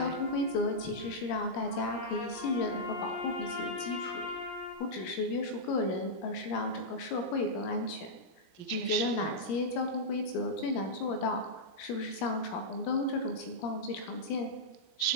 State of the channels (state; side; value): late; right; 17 ms